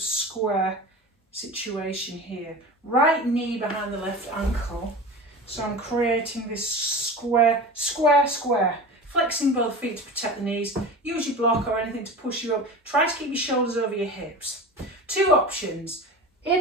situation here. Right knee behind the left ankle. So I'm creating this square. Flexing both feet to protect the knees. Use your block or anything to push you up. Try to keep your shoulders over your hips. Two options.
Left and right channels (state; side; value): normal; both; correlation 0.32